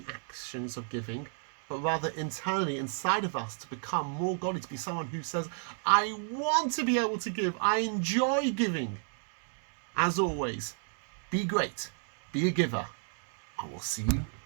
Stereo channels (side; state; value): left; silent; 56 dB below the other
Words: actions of giving, but rather internally inside of us to become more godly, to be someone who says, I want to be able to give, I enjoy giving. As always, be great, be a giver, and we'll see you